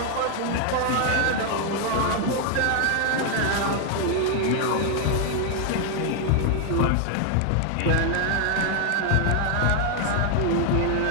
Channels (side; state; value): both; different; correlation 0.00